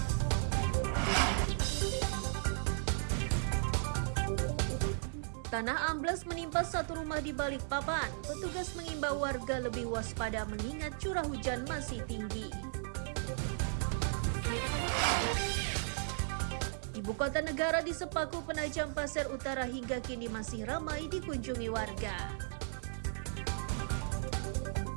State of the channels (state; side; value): silent; left; digital silence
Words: Tanah ambles menimpa satu rumah di Balikpapan. Petugas mengimbau warga lebih waspada mengingat curah hujan masih tinggi. Ibu kota negara di Sepaku Penajam Pasir Utara hingga kini masih ramai dikunjungi warga.